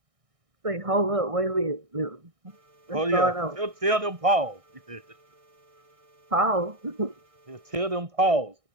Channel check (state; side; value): late; left; 1.6 ms